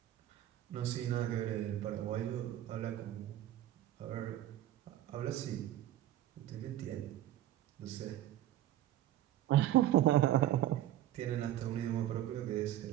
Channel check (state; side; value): quieter; left; 13.1 dB